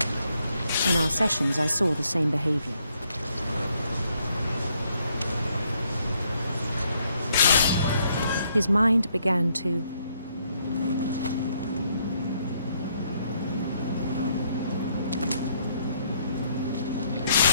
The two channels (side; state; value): both; inverted; correlation -0.72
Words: In our sessions, I saw the same behavior. His mind began to